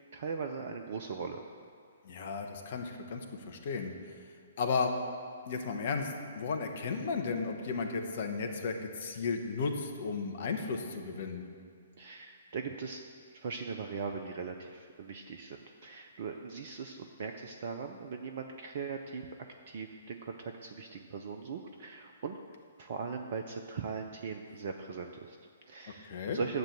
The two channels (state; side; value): inverted; both; correlation -0.58